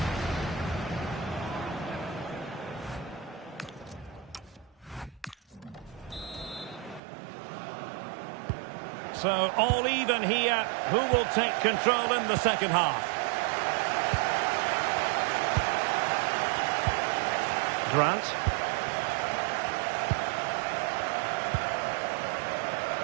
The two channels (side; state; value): left; drops out; at 7.0 s